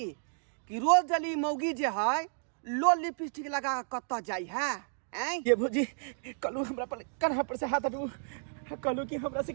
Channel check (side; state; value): left; silent; digital silence